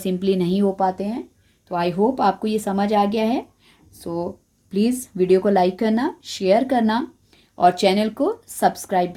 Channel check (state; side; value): identical; both; correlation 1.00